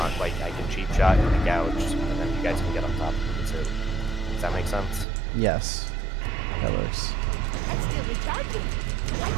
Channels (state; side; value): drops out; left; at 5.1 s